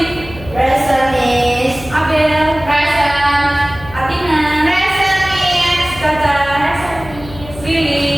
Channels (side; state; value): left; noise; hum, 16 dB below the sound